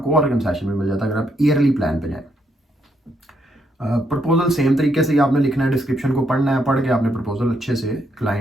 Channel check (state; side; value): normal; both; correlation 0.76